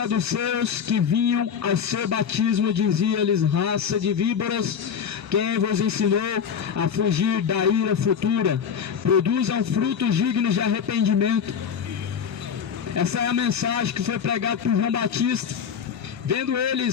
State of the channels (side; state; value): right; quieter; 7.3 dB